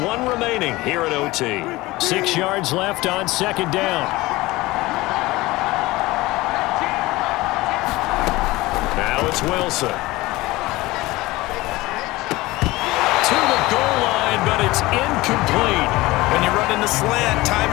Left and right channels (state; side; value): quieter; right; 19.9 dB